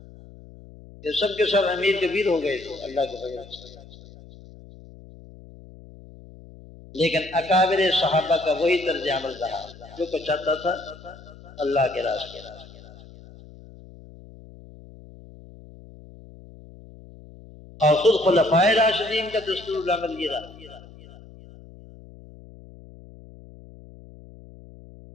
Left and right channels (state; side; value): noise; left; hum, 20 dB below the sound